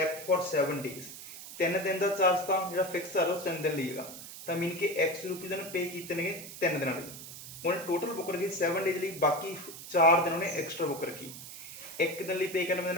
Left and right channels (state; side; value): noise; right; hiss, 12 dB below the sound